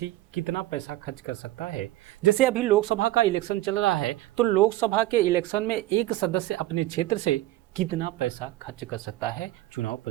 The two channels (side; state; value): left; quieter; 15.8 dB